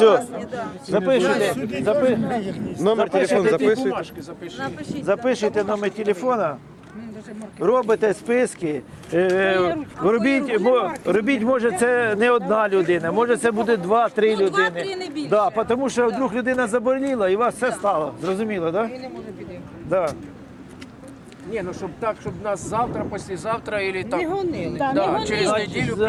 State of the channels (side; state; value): both; identical; correlation 1.00